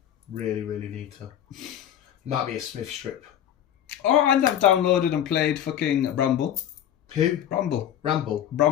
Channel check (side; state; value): right; quieter; 10.5 dB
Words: Really, really need to. Might be a Smith strip. Oh, and I've downloaded and played fucking Bramble. Who? Bramble. Ramble.